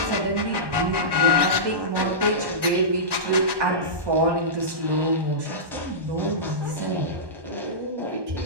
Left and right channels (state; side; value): late; left; 1.2 ms